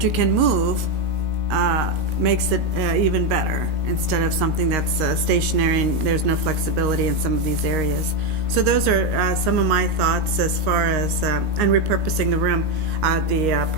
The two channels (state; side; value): late; left; 19 ms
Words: you can move makes it even better, instead of something that's stationary and there's no flexibility in some of these areas. So those are some of my thoughts as far as, and repurposing the room, the